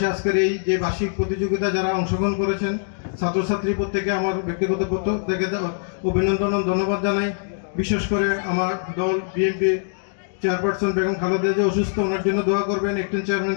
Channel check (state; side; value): silent; right; digital silence